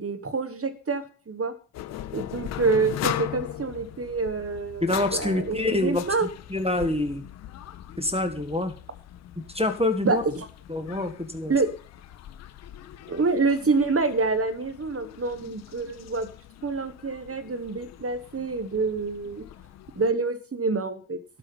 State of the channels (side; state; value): both; normal; correlation 0.17